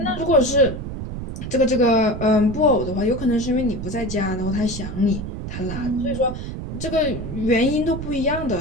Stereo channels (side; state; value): right; noise; rumble, 7 dB below the sound